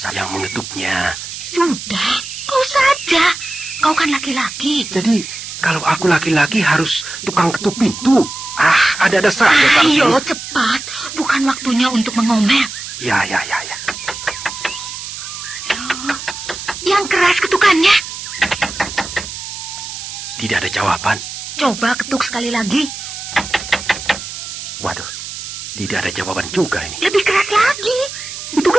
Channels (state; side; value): noise; right; hiss, 9 dB below the sound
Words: yang mengetuknya. Sudah, kau saja. Kau kan laki-laki. Jadi, kalau aku laki-laki harus tukang ketuk pintu. Ada saja. Ayo, cepat. Bukan waktunya untuk mengomel. Ya. Yang keras ketukannya. Tidak ada jawaban. Coba ketuk sekali lagi. Waduh, tidak ada jawaban juga ini. Lebih keras lagi. Itu